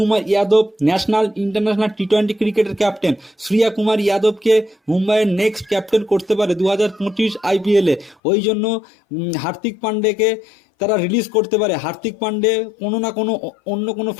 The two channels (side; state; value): right; drops out; at 8.2 s